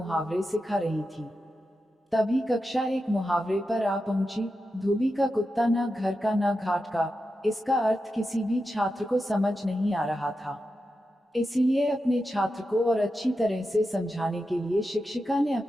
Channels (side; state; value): both; normal; correlation 0.89